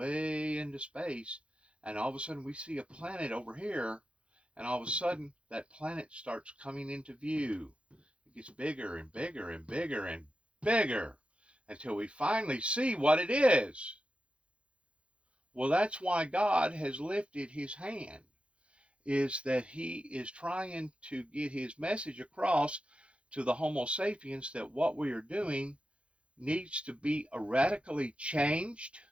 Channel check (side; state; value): left; late; 0.060 ms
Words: into space, and all of a sudden we see a planet over here, and all of a sudden that planet starts coming into view. It gets bigger and bigger and bigger and bigger until we finally see what it is. Well, that's why God has lifted his hand, is that he is trying to get his message across to the Homo sapiens that what we are doing needs to be radically changed,